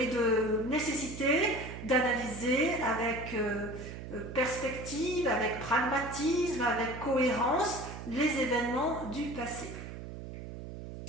nécessité d'analyser avec perspective, avec pragmatisme, avec cohérence les événements du passé.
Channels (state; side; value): noise; right; hum, 10 dB below the sound